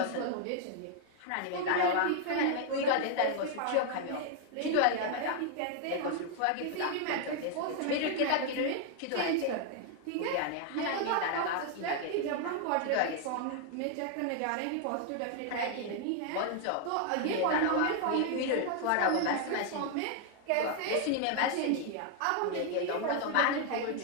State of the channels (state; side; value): different; both; correlation 0.00